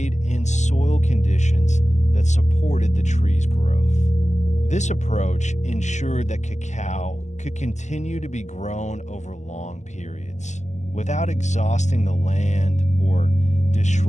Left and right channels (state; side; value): late; right; 0.34 ms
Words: and soil conditions that supported the tree's growth. This approach ensured that cacao could continue to be grown over long periods without exhausting the land or